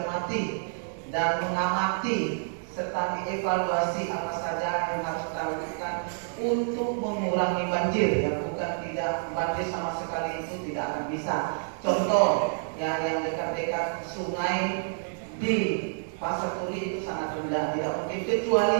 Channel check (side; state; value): left; silent; digital silence